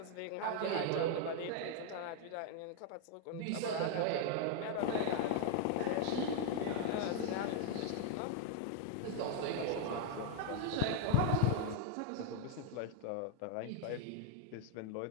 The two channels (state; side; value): different; both; correlation 0.00